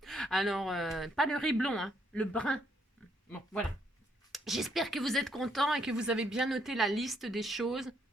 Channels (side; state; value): both; normal; correlation 0.72